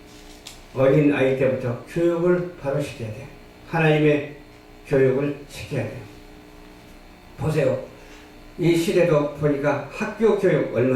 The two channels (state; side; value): identical; both; correlation 1.00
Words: 어린 아이 때부터 교육을 바로 시켜야 돼요. 하나님의 교육을 시켜야 돼요. 보세요. 이 시대도 보니까 학교 교육